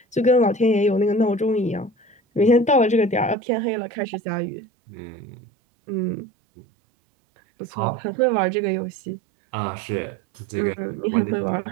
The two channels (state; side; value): drops out; left; at 3.4 s